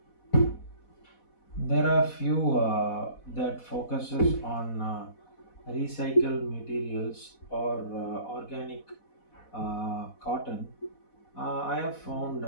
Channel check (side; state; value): right; late; 4.1 ms